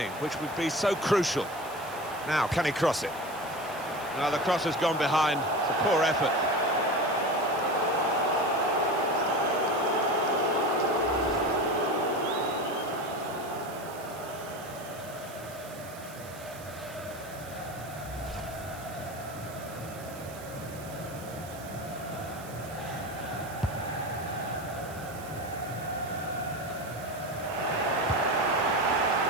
which would be so crucial. Now, can he cross it? Now, the cross has gone behind. It's a poor effort.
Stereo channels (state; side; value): noise; right; hiss, 17 dB below the sound